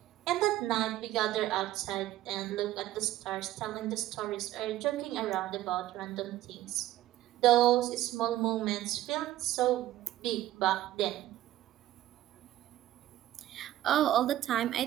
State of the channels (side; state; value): left; quieter; 14.2 dB